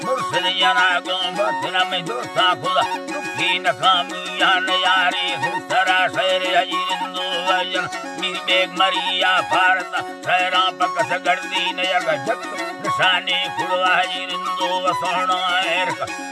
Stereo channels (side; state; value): both; identical; correlation 1.00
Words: मुर्शद जना गो बतना में दोस्ता खुदा दुखी नकामिया नयारे सुतरा शहर हजीरिंदो वजन मीर बेग मरिया भारत शहरा पकस गर्दी नया जग निशानी खुड़वा जिंदो वसोणो एरक